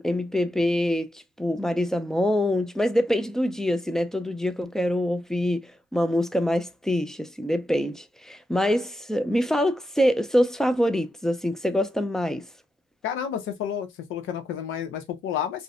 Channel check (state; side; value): normal; both; correlation 0.86